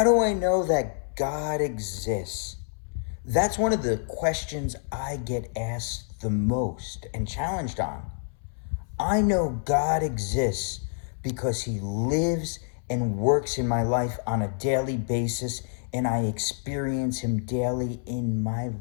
do I know that God exists? That's one of the questions I get asked the most and challenged on. I know God exists because he lives and works in my life on a daily basis, and I experience him daily in my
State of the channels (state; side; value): silent; right; 60 dB below the other